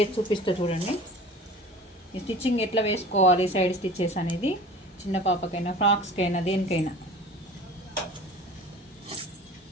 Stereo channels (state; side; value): normal; both; correlation 0.41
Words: చూపిస్తా చూడండి. ఈ స్టిచ్చింగ్ ఎట్లా వేసుకోవాలి, సైడ్ స్టిచ్చెస్ అనేది చిన్న పాపకైనా ఫ్రాక్స్కైనా దేనికైనా